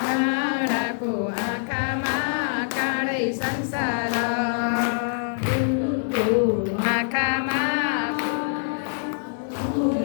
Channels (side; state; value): right; silent; digital silence